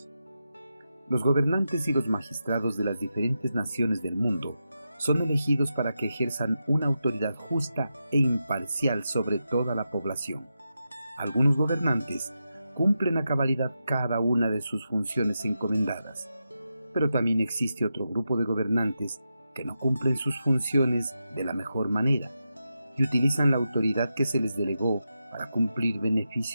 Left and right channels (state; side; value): inverted; both; correlation -0.88